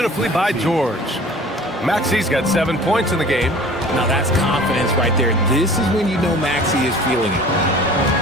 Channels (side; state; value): both; normal; correlation 0.45